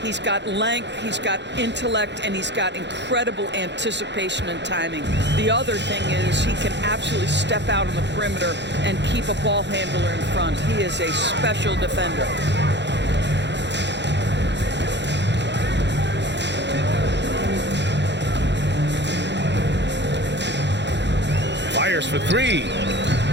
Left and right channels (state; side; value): late; left; 0.51 ms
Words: He's got length, he's got intellect, and he's got incredible anticipation and timing. The other thing is he can absolutely step out on the perimeter and keep a ball handler in front. He is a special defender. Fires for 3.